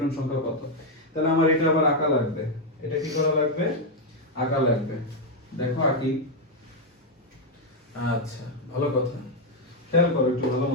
সংখ্যা কত? তাহলে আমার এটা আবার আঁকা লাগবে। এটা কি করা লাগবে? আঁকা লাগবে। দেখো আঁকি। আচ্ছা ভালো কথা, খেয়াল করো একটু ভালো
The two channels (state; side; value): normal; both; correlation 0.02